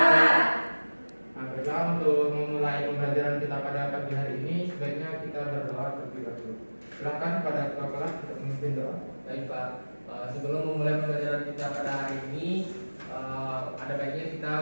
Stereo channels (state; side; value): inverted; both; correlation -1.00